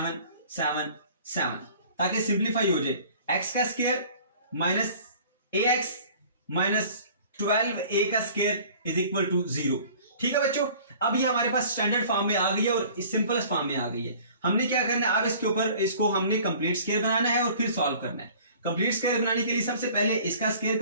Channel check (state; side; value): inverted; both; correlation -0.49